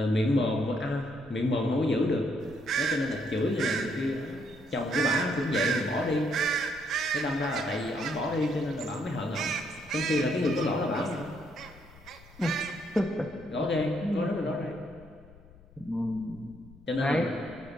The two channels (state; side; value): noise; left; rumble, 23 dB below the sound